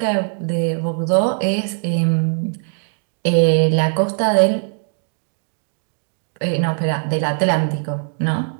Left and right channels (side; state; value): left; silent; digital silence